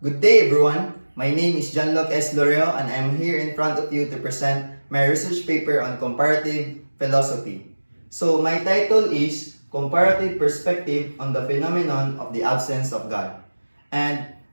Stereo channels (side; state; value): both; inverted; correlation -1.00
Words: Good day, everyone. My name is John-Luc S. Lorio, and I'm here in front of you to present my research paper on comparative philosophy. So, my title is Comparative Perspective on the Phenomenon of the Absence of God. And